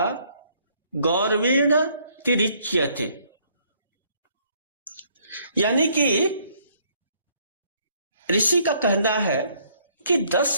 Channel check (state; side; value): inverted; both; correlation -0.65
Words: गौरवेण तिरिच्यते। यानी कि ऋषि का कहना है कि